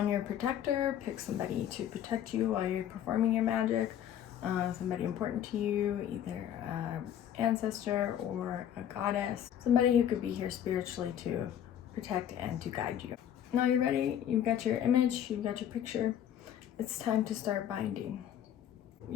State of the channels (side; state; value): right; quieter; 10.2 dB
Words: your protector. Pick somebody to protect you while you're performing your magic. Somebody important to you, either an ancestor or a goddess. Somebody who could be here spiritually to protect and to guide you. Now you're ready. You've got your image, you've got your picture. It's time to start binding.